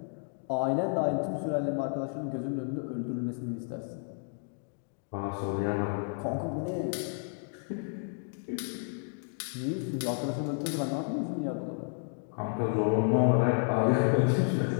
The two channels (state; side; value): silent; right; 57 dB below the other